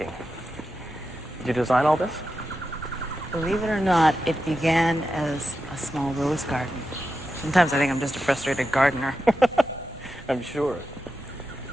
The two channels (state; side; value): normal; both; correlation 0.90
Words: Did you design all this? Believe it or not, it began as a small rose garden. Sometimes I think I'm just a frustrated gardener. I'm sure.